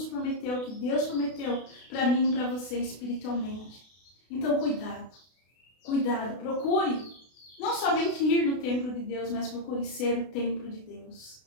prometeu, que Deus prometeu para mim e para você espiritualmente. Então, cuidado. Cuidado, procure não somente ir no templo de Deus, mas procure ser o templo de Deus.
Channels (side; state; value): right; late; 32 ms